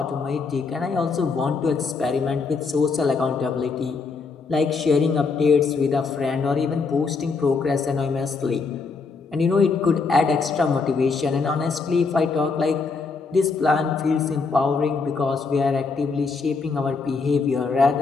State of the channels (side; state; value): right; quieter; 4.6 dB